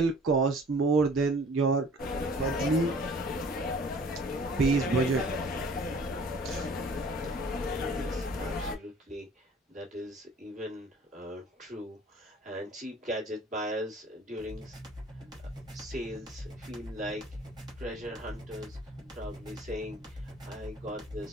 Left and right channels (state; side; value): normal; both; correlation 0.50